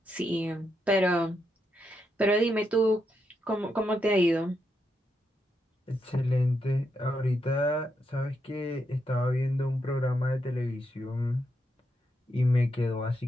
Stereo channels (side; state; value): both; normal; correlation 0.82